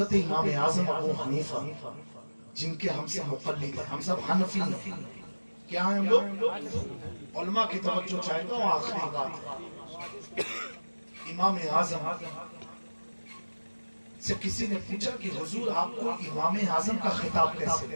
امام اعظم ابو حنیفہ جن کے ہم سے مقلد ہیں، ہم سب حنفی ہیں، کیا ہیں ہم لوگ؟ علماء کی توجہ چاہے تو آخری بات ہے۔ امام اعظم سے کسی نے پوچھا کہ حضور آپ کو امام اعظم کا خطاب کیسے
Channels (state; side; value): inverted; both; correlation -1.00